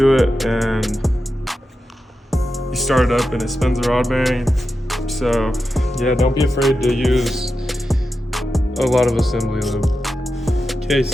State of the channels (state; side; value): normal; both; correlation 0.90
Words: it and you start it up and it spins the rod bearing. So yeah, don't be afraid to use a lot of assembly lube. Okay,